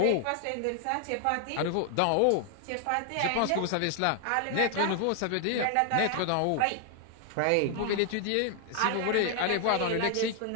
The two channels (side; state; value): both; different; correlation 0.00